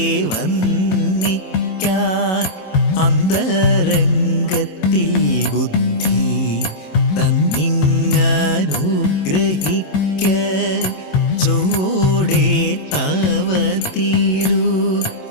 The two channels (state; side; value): late; right; 27 ms